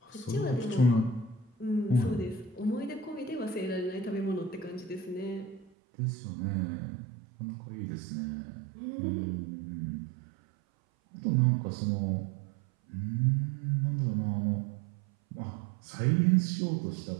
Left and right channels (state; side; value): drops out; left; at 5.7 s